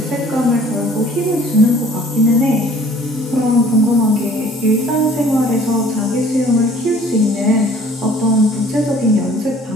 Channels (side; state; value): both; normal; correlation 0.54